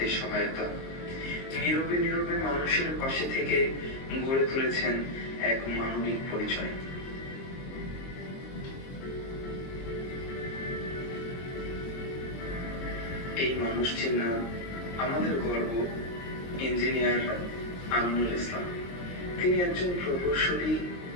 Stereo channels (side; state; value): right; late; 22 ms